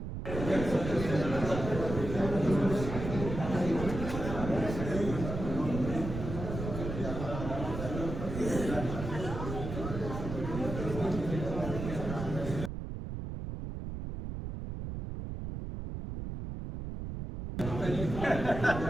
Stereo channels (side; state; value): right; noise; rumble, 6 dB below the sound